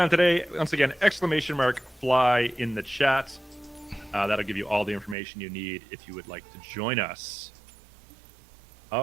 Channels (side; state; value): left; drops out; at 5.2 s